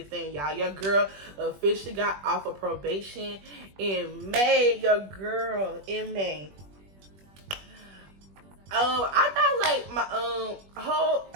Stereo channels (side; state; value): left; late; 21 ms